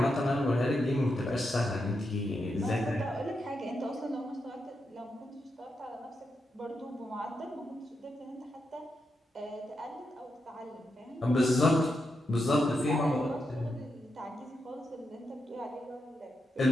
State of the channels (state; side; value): normal; both; correlation 0.85